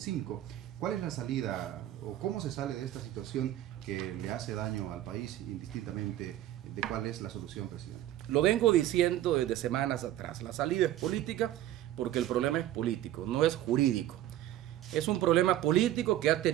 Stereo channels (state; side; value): quieter; left; 13.3 dB